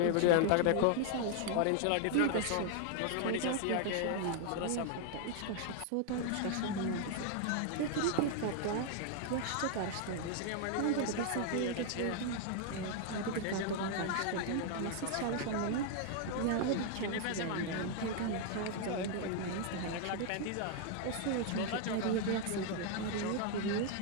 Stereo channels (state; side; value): different; both; correlation 0.00